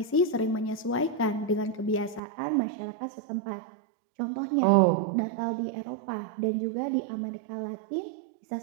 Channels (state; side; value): drops out; left; at 2.2 s